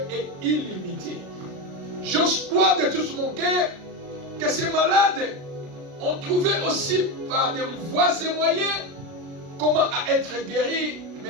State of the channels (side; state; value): left; late; 36 ms